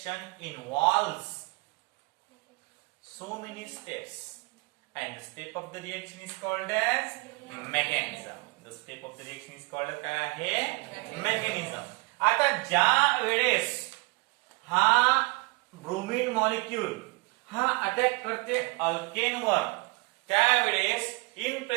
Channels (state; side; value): quieter; left; 27.4 dB